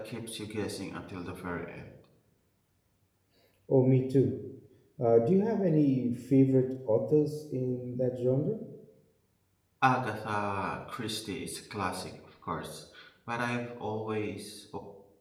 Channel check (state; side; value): identical; both; correlation 1.00